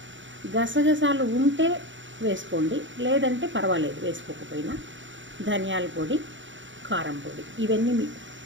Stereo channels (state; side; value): late; left; 0.55 ms